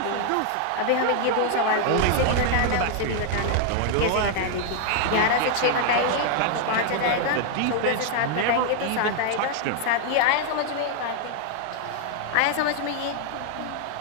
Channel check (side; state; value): both; different; correlation 0.00